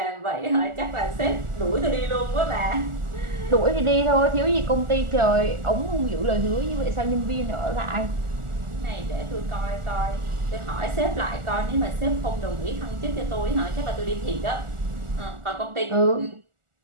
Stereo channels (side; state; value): left; late; 1.4 ms